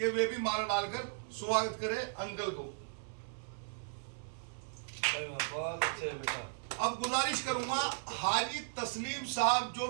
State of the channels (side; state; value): left; silent; 54 dB below the other